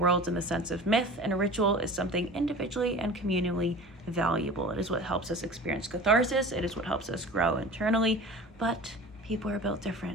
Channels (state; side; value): normal; both; correlation 0.38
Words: in the sense of myth and ritual is something individually and communally valuable. It is what helps us experience catharsis. It is what helps us grow internally. But people are built